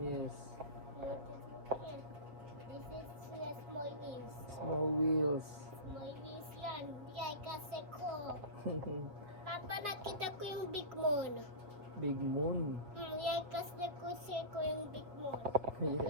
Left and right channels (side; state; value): left; late; 4.9 ms